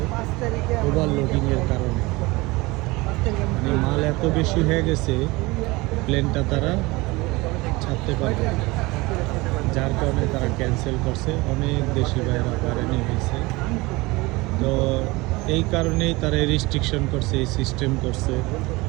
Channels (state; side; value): quieter; left; 22.6 dB